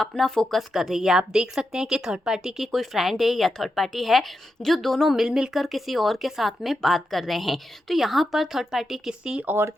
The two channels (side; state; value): both; normal; correlation 0.87